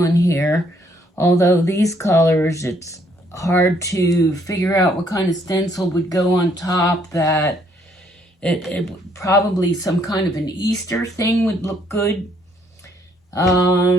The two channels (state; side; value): normal; both; correlation 0.68